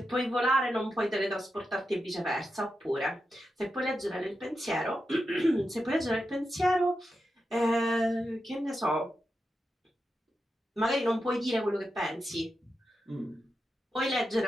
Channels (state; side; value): normal; both; correlation 0.88